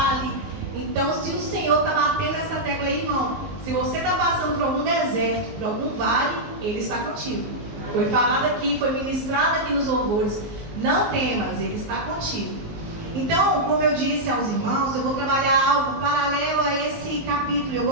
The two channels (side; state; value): left; late; 19 ms